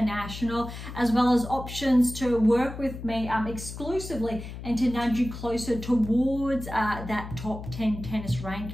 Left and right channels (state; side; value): noise; left; hum, 10 dB below the sound